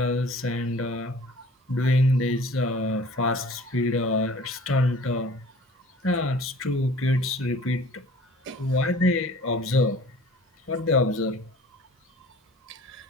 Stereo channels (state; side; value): normal; both; correlation 0.47